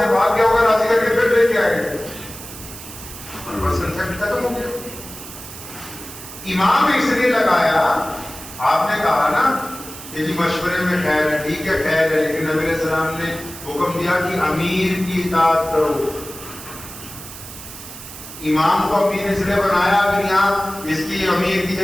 بھاگ گیا ہوگا راضی کر کے پھر لے کے آئے گے، اور بس کنسپٹ ختم ہو گیا۔ امام اس لیے لگایا، آپ نے کہا نا کہ جی مشورے میں خیر ہے، ٹھیک ہے خیر ہے، لیکن نبی علیہ السلام نے حکم دیا کہ امیر کی اطاعت کرو۔ امام کو امیر اس لیے بنایا، اگر یہاں اس کی امیر کی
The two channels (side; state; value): right; noise; hiss, 13 dB below the sound